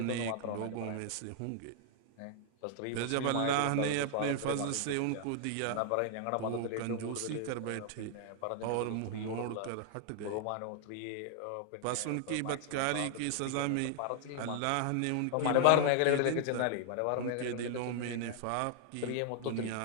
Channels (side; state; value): both; different; correlation -0.01